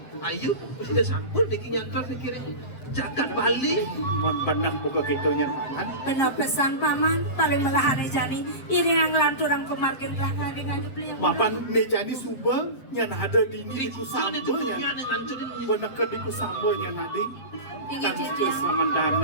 ayu Persida sangkul Diki nyantor pikirin Jagat Bali benar buka kitonya paman. Benar pesan paman paling melahane jani iring lanturang pemargin belakang dengan dibeli Mapan nejani suba yang ada di ini di kusamba yang benar ke di kusamba yang ada kan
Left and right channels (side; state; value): right; late; 7.5 ms